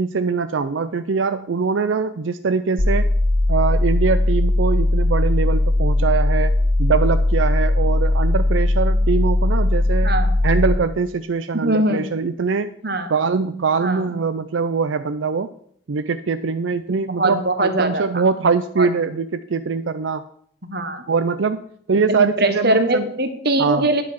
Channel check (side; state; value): both; normal; correlation 0.39